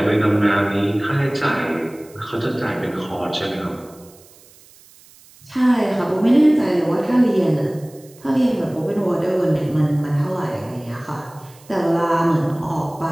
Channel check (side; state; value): right; noise; hiss, 26 dB below the sound